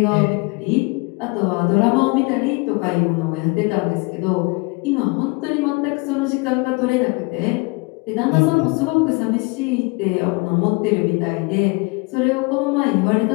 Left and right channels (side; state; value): right; quieter; 28.2 dB